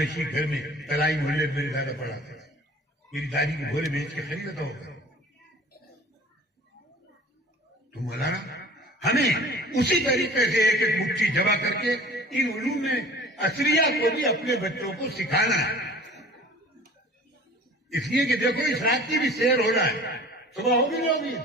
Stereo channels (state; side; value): normal; both; correlation 0.45